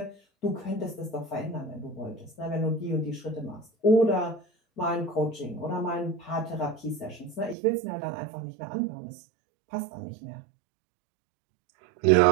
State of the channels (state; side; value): drops out; left; at 7.6 s